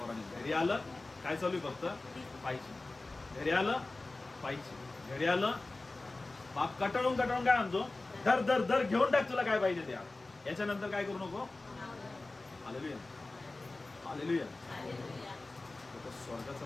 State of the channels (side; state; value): right; quieter; 3.2 dB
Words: घरी आलं काय चालू आहे, फक्त पाहिजे. घरी आलं पाहिजे, घरी आलं बाप कटाळून कटाळून काय म्हणतो, धर धर धर घेऊन टाक, तुला काय पाहिजे त्या. याच्यानंतर काय करू नको. Hallelujah, hallelujah. तो स्वर्गाचा